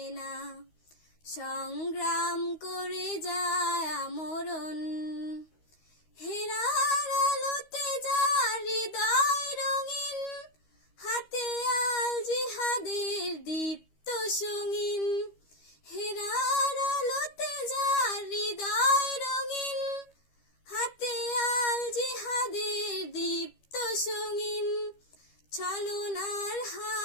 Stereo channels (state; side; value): late; right; 13 ms